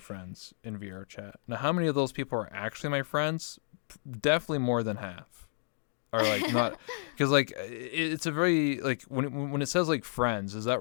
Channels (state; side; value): silent; right; digital silence